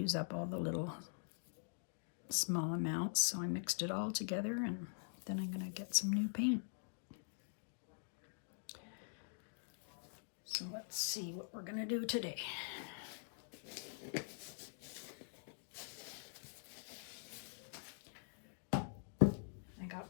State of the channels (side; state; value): right; silent; digital silence